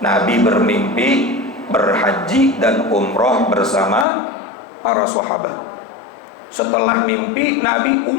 Nabi bermimpi berhaji dan umroh bersama para sahabat. Setelah mimpi, Nabi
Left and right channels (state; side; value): drops out; right; at 4.0 s